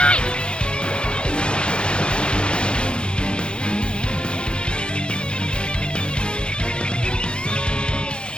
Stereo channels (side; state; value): right; late; 0.053 ms